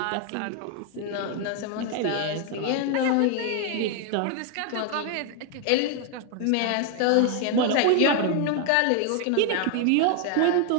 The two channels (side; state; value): both; different; correlation 0.01